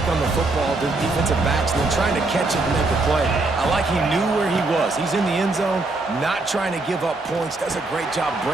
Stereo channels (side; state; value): left; quieter; 3.2 dB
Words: on the football, the defensive backs, and then trying to catch it and make a play. I like he knew where he was. He's in the end zone, not trying to give up points. Does a great job